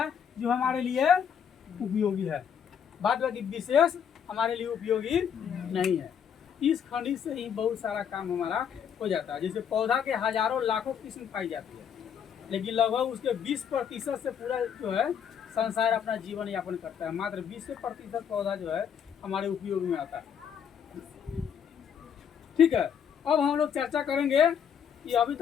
जो हमारे लिए उपयोगी है। बाद बाकी विशेष हमारे लिए उपयोगी नहीं है। 30 खनिज से ही बहुत सारा काम हमारा हो जाता है। जैसे पौधा के हजारों लाखों किस्म पाई जाती है, लेकिन लगभग उसके 20% से पूरा जो है संसार अपना जीवन यापन करता है। मात्र 20% पौधा जो है हमारे उपयोग में आता है। ठीक है, अब हम लोग चर्चा करेंगे कि अभी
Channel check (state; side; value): quieter; right; 8.0 dB